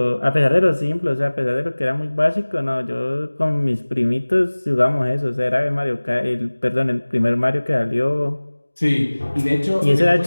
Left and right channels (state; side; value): inverted; both; correlation -1.00